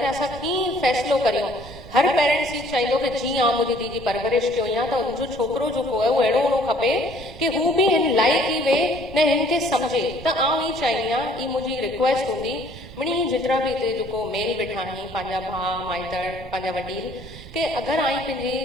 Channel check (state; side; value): noise; right; rumble, 16 dB below the sound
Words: असां कीअं फ़ैसिलो करियूं। हर पेरेंट्स ही चाहिए कि जीअं आउं मुंहिंजी धीउ जी परवरिश कयो या त उनजो छोकिरो जेको आहे उहो अहिड़ो हुअणो खपे कि हू बि हिन लाइक़ ई वे न हिन खे सम्झे। त आउं ई चाहींदी आहियां, ई मुंहिंजी रिक्वेस्ट हूंदी मिणी जेतिरा बि हिते जेको मेल वेठा आहिनि पंहिंजा भाउ माइटड़ पंहिंजा वॾील के अगरि आई पंहिंजी